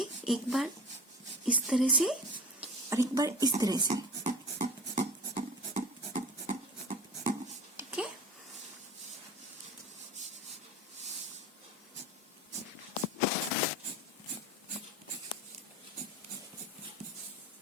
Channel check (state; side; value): normal; both; correlation 0.36